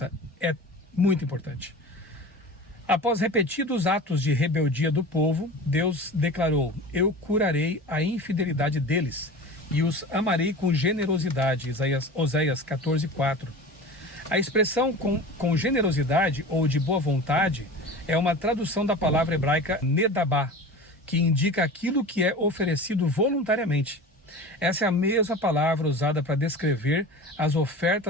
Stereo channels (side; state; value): both; normal; correlation 0.34